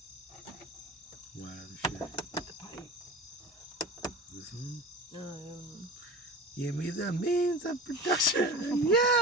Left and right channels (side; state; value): both; normal; correlation 0.34